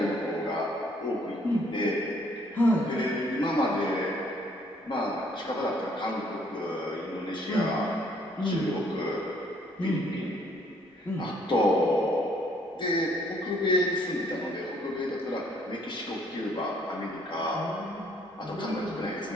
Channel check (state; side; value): normal; both; correlation 0.64